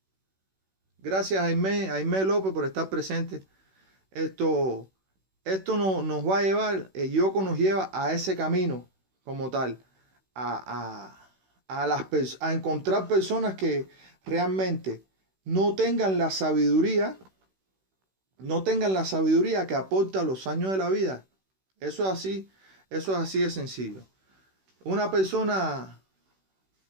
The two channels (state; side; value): late; left; 16 ms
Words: gracias a Jaime López por estar presente. Esto nos va a llevar, el yoga nos lleva a ese camino como tal, a encontrar personas que realmente no tengan la sabiduría que aporta los años de la vida. Eso es así de sencillo. Una persona,